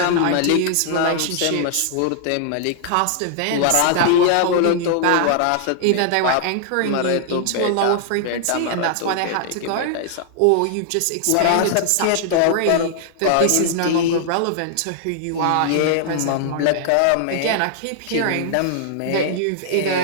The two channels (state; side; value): different; both; correlation -0.01